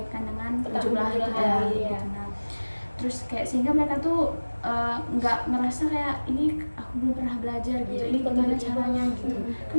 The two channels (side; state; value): both; inverted; correlation -1.00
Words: dengan perjumlahan itu tadi ya. gitu. Nah, terus kayak sehingga mereka tuh nggak ngerasa kayak ini aku belum pernah belajar gitu, Iya, ini gimana tiba-tiba. caranya gitu.